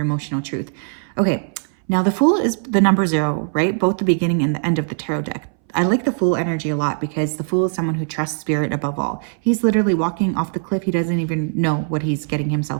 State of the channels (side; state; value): left; silent; 63 dB below the other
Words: emotional truth. Okay, now the Fool is the number 0, right? Both the beginning and the end of the tarot deck. I like the Fool energy a lot because the Fool is someone who trusts spirit above all. He's literally walking off the cliff. He doesn't even know what he's getting